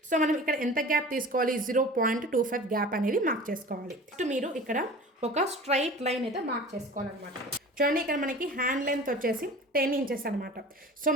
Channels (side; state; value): both; normal; correlation 0.39